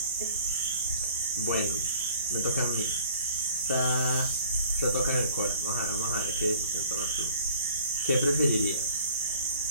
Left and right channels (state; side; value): inverted; both; correlation -0.52